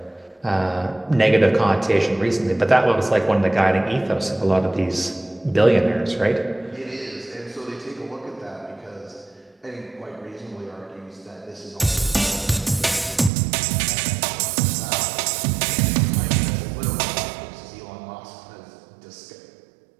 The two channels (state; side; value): drops out; left; at 13.3 s